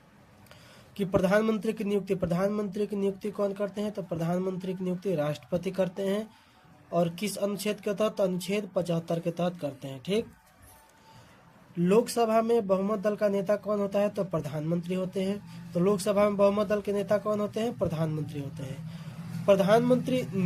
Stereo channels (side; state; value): both; identical; correlation 1.00